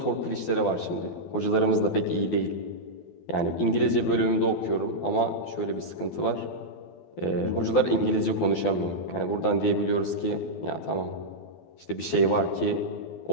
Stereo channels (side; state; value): right; late; 12 ms